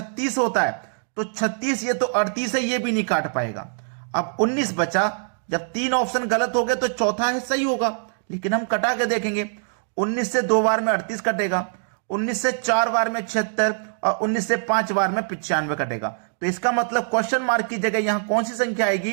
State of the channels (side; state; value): left; silent; digital silence